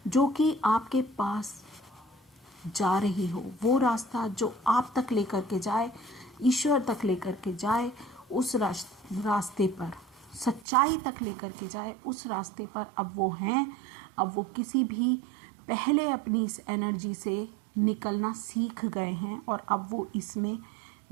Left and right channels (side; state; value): left; drops out; at 10.7 s